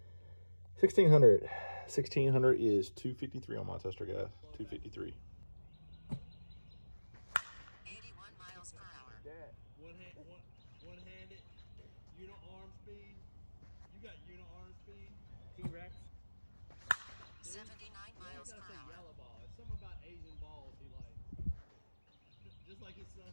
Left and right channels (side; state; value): both; inverted; correlation -1.00